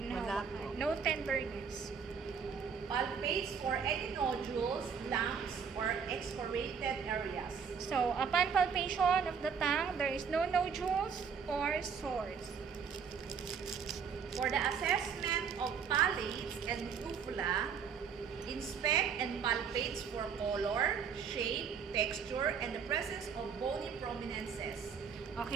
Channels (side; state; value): left; quieter; 6.5 dB